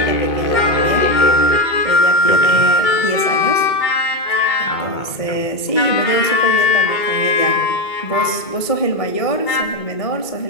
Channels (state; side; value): late; right; 2.2 ms